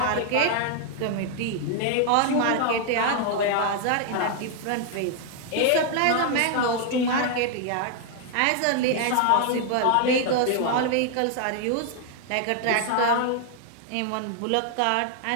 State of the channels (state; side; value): different; both; correlation 0.00